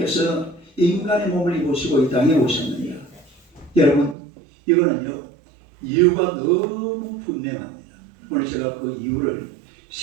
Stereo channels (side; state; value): left; drops out; at 4.2 s